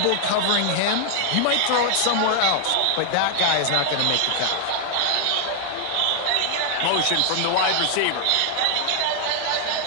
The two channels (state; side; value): different; both; correlation 0.00